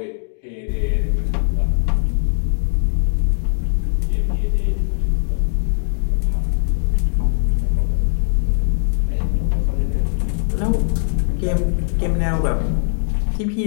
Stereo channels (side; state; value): right; silent; digital silence